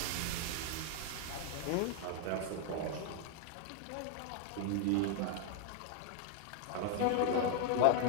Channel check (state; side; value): different; both; correlation 0.00